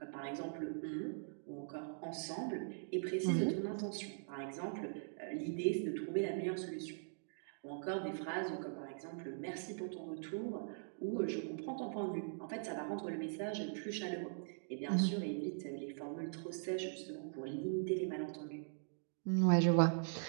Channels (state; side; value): silent; left; digital silence